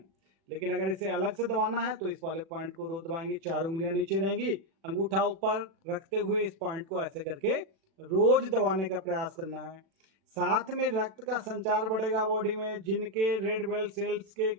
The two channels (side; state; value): left; late; 36 ms